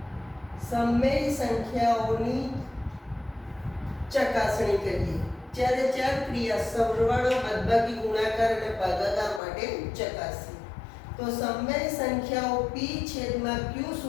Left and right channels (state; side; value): drops out; right; at 9.4 s